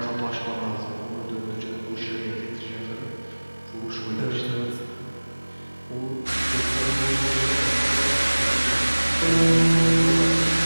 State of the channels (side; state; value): both; inverted; correlation -1.00